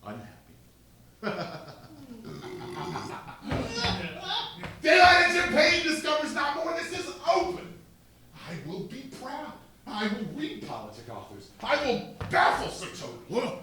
unhappy. Daylight and champagne discovers not more. This is open. I will be proud. I will read politic authors. I will baffle Sir Toby.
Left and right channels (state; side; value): identical; both; correlation 1.00